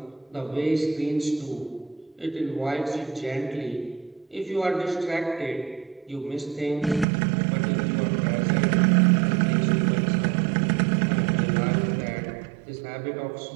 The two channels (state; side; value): drops out; left; at 7.1 s